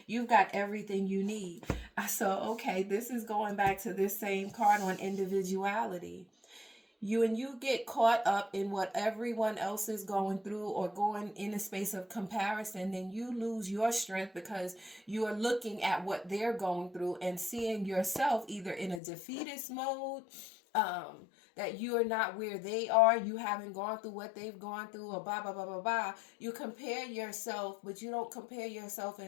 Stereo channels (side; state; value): right; drops out; at 19.0 s